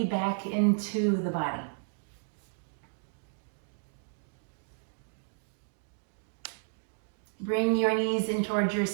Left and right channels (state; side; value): silent; left; digital silence